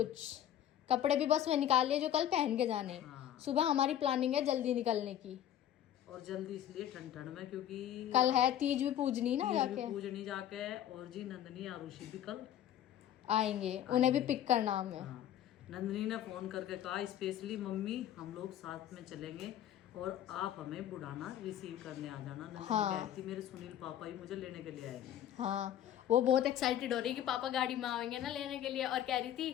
कपड़े भी बस मैं निकाल लिए जो कल पहन के जाने। हाँ। सुबह हमारी प्लानिंग है जल्दी निकलने की। और जल्दी इसलिए ठंड ठंड में, क्योंकि कल है तीज भी पूजनी ना, जाके पूजनी जाके। और जी नंदनी आरुषि भी कल आएंगे, उन्हें भी पिक करना हमें। हाँ। नंदनी ने फोन करके कहा स्पेशली, मम्मी हम लोग साथ में चलेंगे और आप हमें बुढ़ाना रिसीव करने आ जाना। नंदनी कह रही थी मेरे सुनील पापा ही मुझे लेने के लिए आएंगे। हाँ, वो बहुत एक्साइटेड हो रही है कि पापा गाड़ी में आएंगे ना लेने के लिए। और कह रही थी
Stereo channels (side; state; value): right; quieter; 11.2 dB